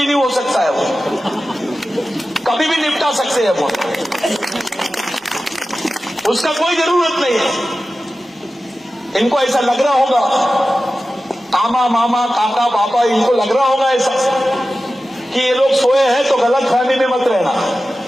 हो सकता है, वो कभी भी निपटा सकते हैं वो, उसका कोई जरूरत नहीं है। इनको ऐसा लग रहा होगा, आमा मामा काका पापा, इनको लग रहा होगा ऐसा कि ये लोग सोए हैं, तो गलत फहमी में मत रहना।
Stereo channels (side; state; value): both; normal; correlation 0.94